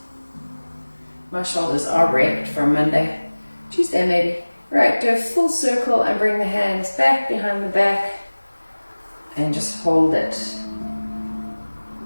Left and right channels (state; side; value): inverted; both; correlation -1.00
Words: My shoulders are wrecked from Monday. Tuesday maybe. Right, do a full circle and bring the hands back behind the back and just hold it.